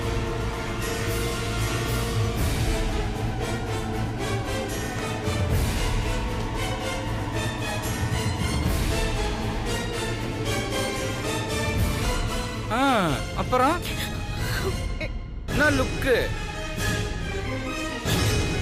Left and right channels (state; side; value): identical; both; correlation 1.00